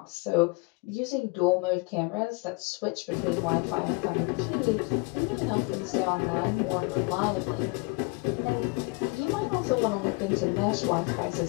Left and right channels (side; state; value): right; quieter; 28.7 dB